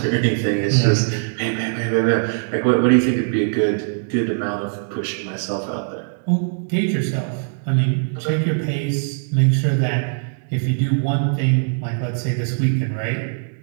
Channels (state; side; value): silent; left; digital silence